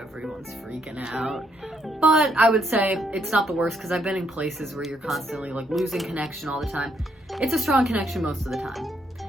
freaking out. But I would say it's not the worst because I've been in places where you're constantly like losing connection all the time. It's a strong connection most of the time,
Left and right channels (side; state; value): both; normal; correlation 0.73